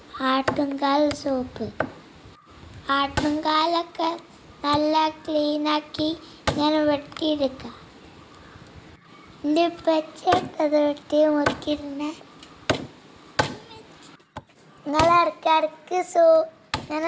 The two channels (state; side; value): identical; both; correlation 1.00